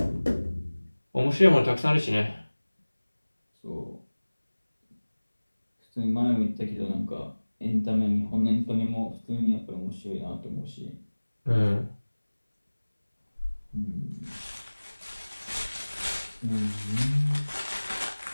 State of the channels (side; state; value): both; inverted; correlation -1.00